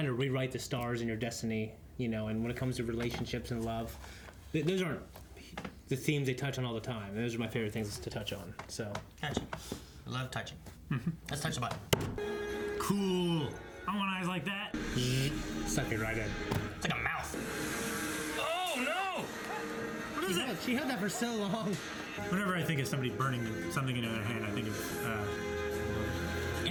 to rewrite the stars in your destiny, you know. And when it comes to relationships and love, those aren't the themes they touch on all the time. Those are my favorite things to touch on. So. Touching. I love touching. Let's touch the button. Cool. I want eyes like that. Suck it right in. It's like a mouth. Oh no! What is it? She had that for so long. Whenever I think of somebody burning something into their hand, I think of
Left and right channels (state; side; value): identical; both; correlation 1.00